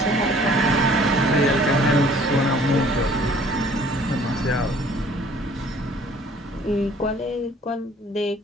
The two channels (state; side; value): normal; both; correlation 0.55